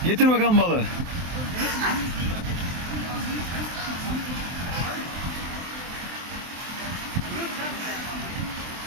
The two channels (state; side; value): late; left; 23 ms